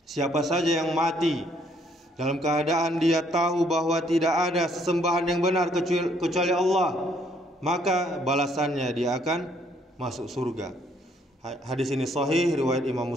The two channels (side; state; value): both; normal; correlation 0.66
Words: Siapa saja yang mati dalam keadaan dia tahu bahwa tidak ada sesembahan yang benar kecuali Allah, maka balasannya dia akan masuk surga. Hadis ini sahih, riwayat Imam